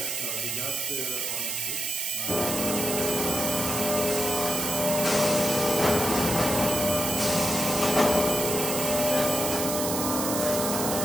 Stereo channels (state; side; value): noise; right; hiss, 2 dB below the sound